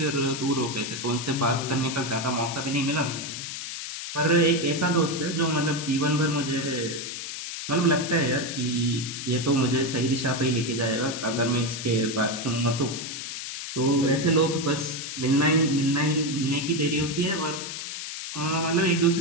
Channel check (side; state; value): left; noise; hiss, 7 dB below the sound